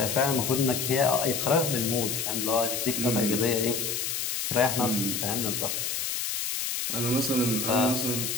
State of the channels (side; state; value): left; noise; hiss, 2 dB below the sound